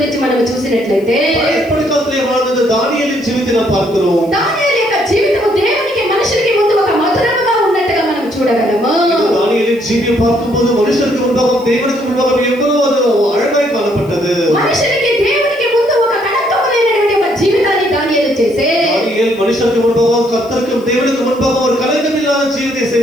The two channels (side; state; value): left; noise; hiss, 26 dB below the sound